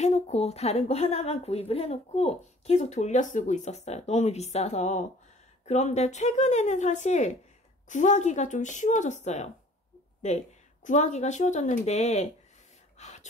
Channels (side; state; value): both; normal; correlation 0.52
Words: 다른 거 하나만 구입을 해놓고 계속 돌려 쓰고 있었어요. 너무 비싸서. 그런데 최근에는 사실 구하기가 좀 쉬워졌어요. 네, 구하기가 쉬워졌는데